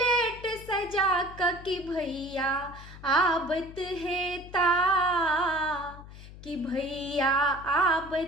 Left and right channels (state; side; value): noise; left; hum, 16 dB below the sound